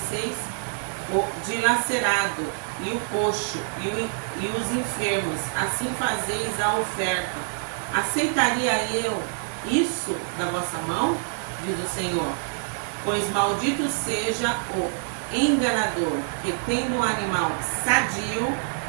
o dilacerado, e o coxo, e os enfermos, assim fazeis a oferta. Aceitaria eu isso da vossa mão? Diz o Senhor. Pois maldito seja o enganador, que tendo um animal sadio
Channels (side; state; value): left; silent; digital silence